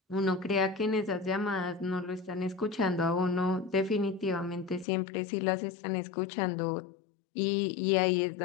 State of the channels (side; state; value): right; drops out; at 4.9 s